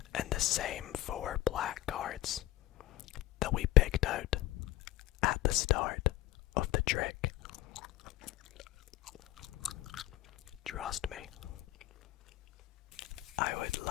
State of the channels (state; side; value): quieter; right; 15.7 dB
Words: and the same 4 black cards that we picked out at the start of the trick. Trust me. I would